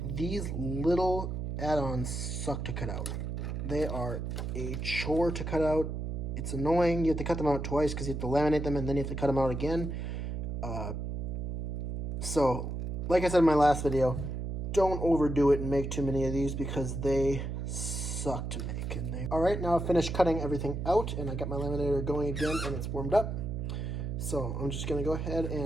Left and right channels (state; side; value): noise; right; hum, 3 dB below the sound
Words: These little add-ons suck to cut out. They are a chore to cut out. It's annoying. You have to cut them out twice because you have to laminate them and then you have to cut them out again. So, like I said in my last video, don't overdo it and make too many of these because they suck to make. Alright, now I've finished cutting everything out and I got my laminator going again and it's warmed up. So I'm just going to go ahead